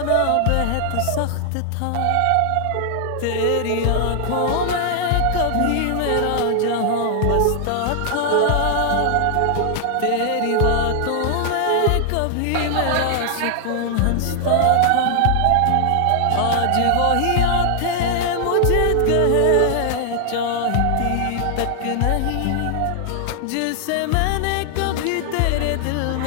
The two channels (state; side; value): different; both; correlation 0.00